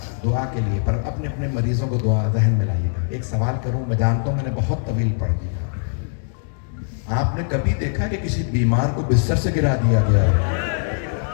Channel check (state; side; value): silent; right; 65 dB below the other